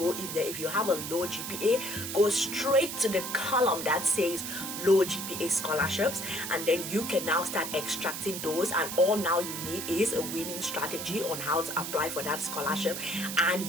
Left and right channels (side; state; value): right; noise; hiss, 6 dB below the sound